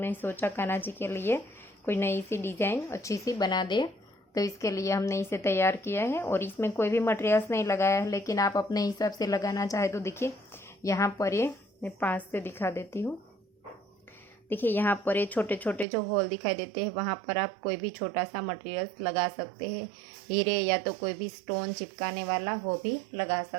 सोचा कान्हा जी के लिए कोई नई सी डिज़ाइन अच्छी सी बना दे। तो इसके लिए हमने इसे तैयार किया है और इसमें कोई भी मटेरियल्स नहीं लगाया है, लेकिन आप अपने हिसाब से लगाना चाहे तो देखिए यहाँ पर ये मैं 5 से दिखा देती हूँ। देखिए यहाँ पर ये छोटे छोटे जो होल दिखाई देते हैं, वहाँ पर आप कोई भी छोटा सा मटेरियल्स लगा सकते हैं। हीरे या तो कोई भी स्टोन चिपकाने वाला वो भी लगा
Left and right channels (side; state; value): left; drops out; at 15.9 s